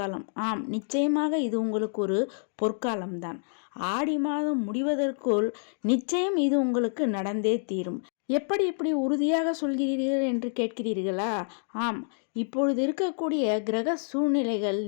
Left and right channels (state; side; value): silent; right; digital silence